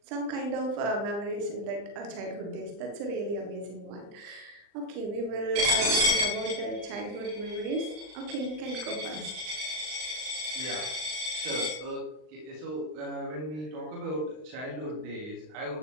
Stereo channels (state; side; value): late; left; 39 ms